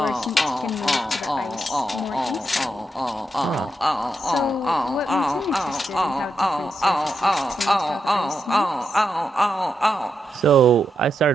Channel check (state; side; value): normal; both; correlation 0.84